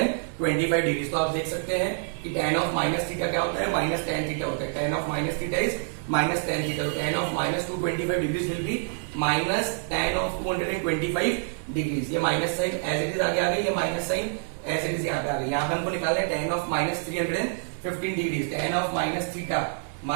डिग्री। तो आप देख सकते हैं कि tan ऑफ माइनस थीटा क्या होता है, माइनस tan थीटा होता है। tan of minus theta is minus tan theta. तो tan of -225 degree will be minus tan of 225 degree. ये minus sign as it is आगे आ गई, ये minus sign as it is यहाँ पे आ गई। यहाँ पे हमको निकालना है tan of -315 degree. tan of minus theta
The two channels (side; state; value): left; silent; 59 dB below the other